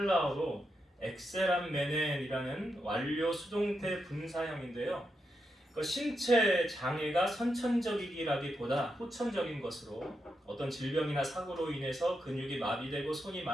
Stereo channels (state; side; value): normal; both; correlation 0.84